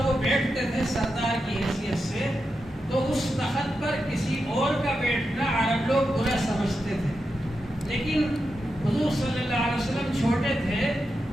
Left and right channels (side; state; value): both; normal; correlation 0.88